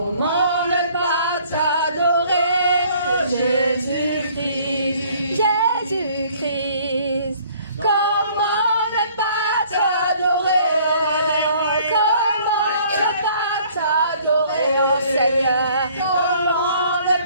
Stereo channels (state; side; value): inverted; both; correlation -0.57